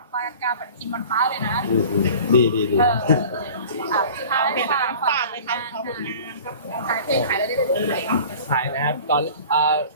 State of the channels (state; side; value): inverted; both; correlation -0.43